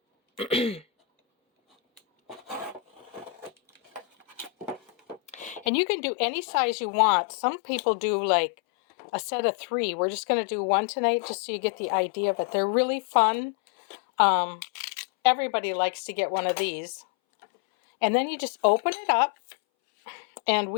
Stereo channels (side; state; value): right; drops out; at 5.7 s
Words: And you can do any size you want. Some people do like a set of 3. We're just going to do one tonight just so you get the idea of it. They're really fun. Everybody likes to get one of these. And then you just open it up. And